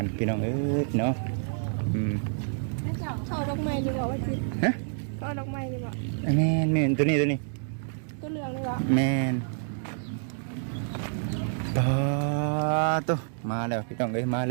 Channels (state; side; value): silent; left; digital silence